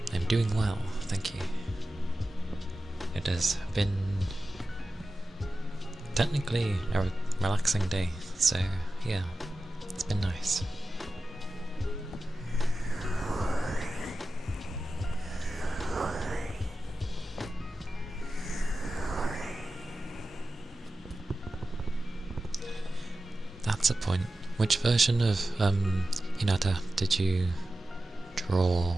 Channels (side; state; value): both; normal; correlation 0.93